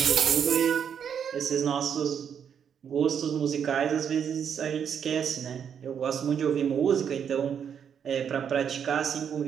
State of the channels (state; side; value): quieter; left; 7.9 dB